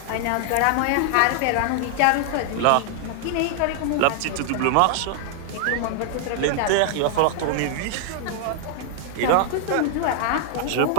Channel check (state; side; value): different; both; correlation 0.00